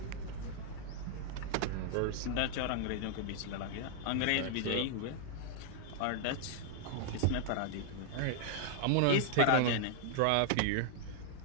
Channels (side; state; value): both; different; correlation 0.00